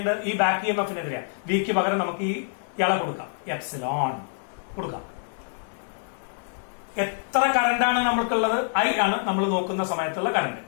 ഈ ബാക്ക് EMF-നെതിരെ. വിക്ക് പകരം നമുക്ക് ഈ ഇള കൊടുക്കാം, എപ്സിലോൺ കൊടുക്കാം. എത്ര കറണ്ടാണ് നമുക്കുള്ളത്? ഐ ആണ് നമ്മൾ നോക്കുന്ന സമയത്തുള്ള കറണ്ട്.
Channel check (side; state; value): right; silent; 60 dB below the other